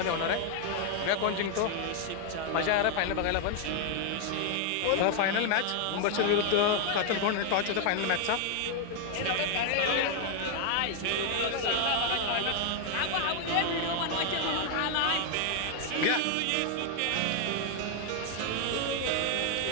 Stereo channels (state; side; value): different; both; correlation 0.00